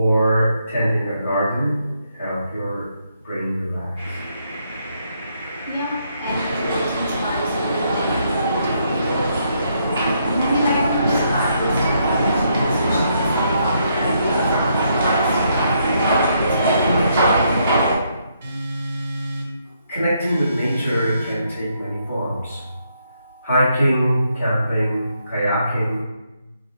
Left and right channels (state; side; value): inverted; both; correlation -0.75